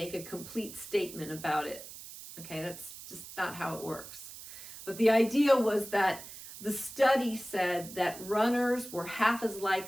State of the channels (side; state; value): right; noise; hiss, 14 dB below the sound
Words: a complete statement about it. Okay, that's just not how it works. But the idea was that the study said that runners were half as